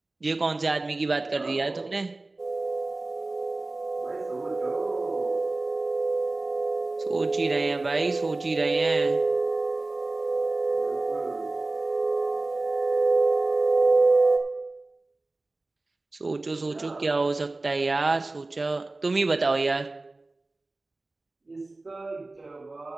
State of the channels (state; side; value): quieter; left; 3.1 dB